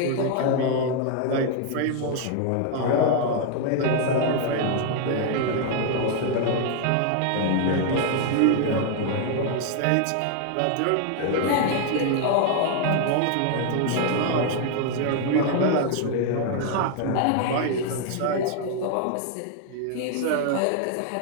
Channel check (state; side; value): different; both; correlation 0.00